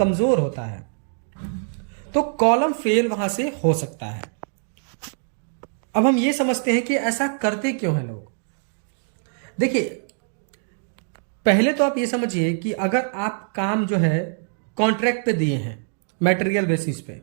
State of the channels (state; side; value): silent; left; digital silence